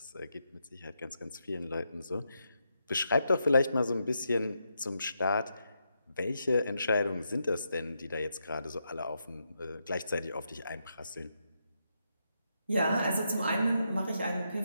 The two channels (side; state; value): both; inverted; correlation -0.82